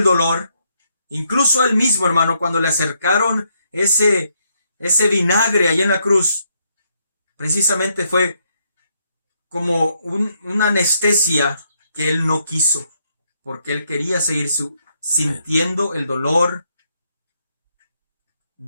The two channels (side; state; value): both; inverted; correlation -0.75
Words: dolor. Incluso a él mismo, hermano, cuando le acercaron ese vinagre ahí en la cruz, precisamente fue como una anestesia que él no quiso, porque él quería seguir sintiendo el dolor